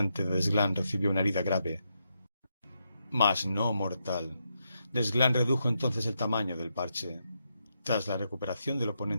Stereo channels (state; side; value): inverted; both; correlation -0.82